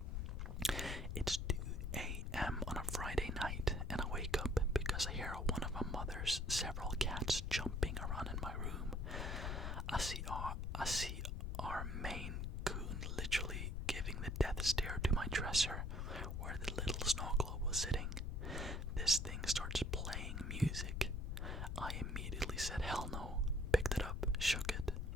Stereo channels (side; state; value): left; noise; rumble, 2 dB below the sound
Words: It's 2 a.m. on a Friday night, and I wake up because I hear one of my mother's several cats jumping around in my room. I see our Maine Coon literally giving the death stare to my dresser where the little snow globe was sitting. This thing starts playing music. I immediately said hell no, picked it up, shook it,